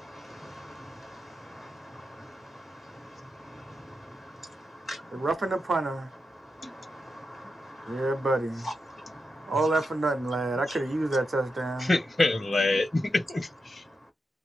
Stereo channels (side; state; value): both; normal; correlation 0.87